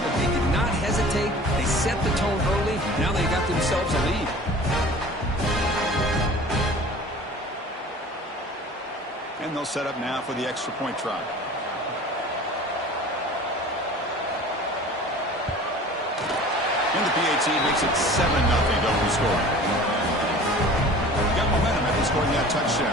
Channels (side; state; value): both; normal; correlation 0.43